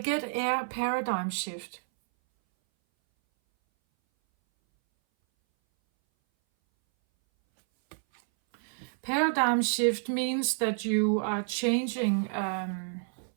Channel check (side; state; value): left; silent; 58 dB below the other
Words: air paradigm shift. Paradigm shift means that you are changing,